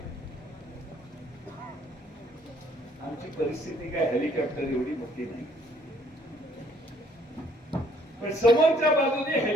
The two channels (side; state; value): both; normal; correlation 0.63